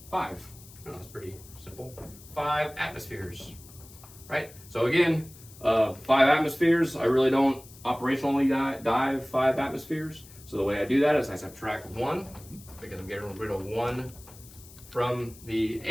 5. Oh, that's pretty simple. 5 atmospheres, right? So again, 5 atmospheres, I really don't operationally dive 5 atmospheres. So the way I do that is I subtract 1, because I'm getting rid of 1 from the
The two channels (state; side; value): noise; left; hiss, 20 dB below the sound